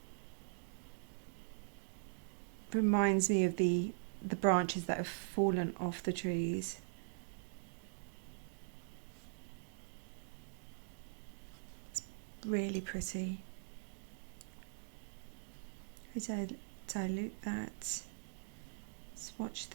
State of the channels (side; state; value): left; silent; digital silence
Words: reminds me of the branches that have fallen off the trees. It's really pretty. I dilute that, swatch